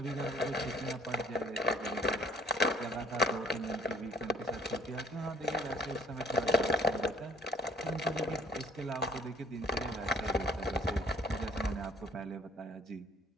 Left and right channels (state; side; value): normal; both; correlation 0.59